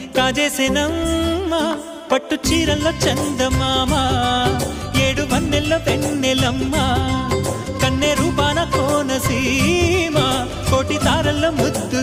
కాజేసేనమ్మా పట్టు చీరల్లో చందమామా ఏడు వన్నెల్లో వెన్నెలమ్మా కన్నె రూపాన కోనసీమ కోటి తారల్లో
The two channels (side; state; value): both; identical; correlation 1.00